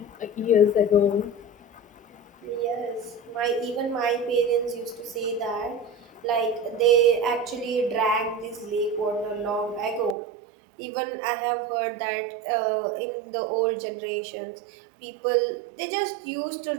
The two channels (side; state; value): left; drops out; at 10.2 s